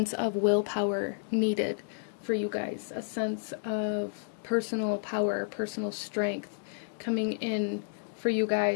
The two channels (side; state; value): right; silent; digital silence